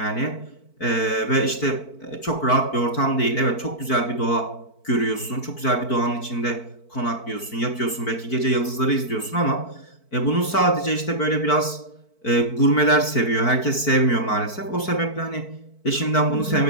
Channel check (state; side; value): late; right; 4.5 ms